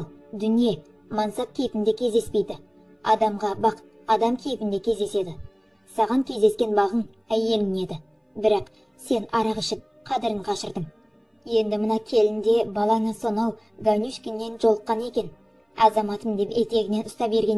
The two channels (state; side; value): identical; both; correlation 1.00